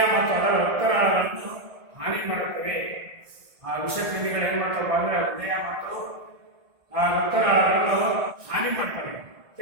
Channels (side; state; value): left; late; 1.6 ms